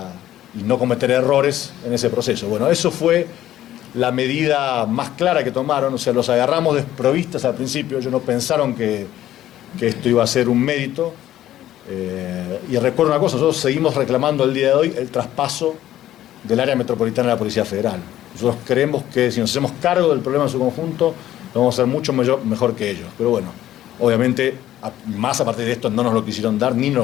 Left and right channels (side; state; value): right; quieter; 13.0 dB